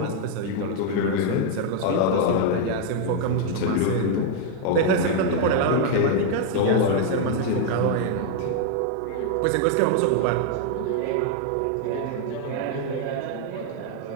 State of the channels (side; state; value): both; different; correlation 0.00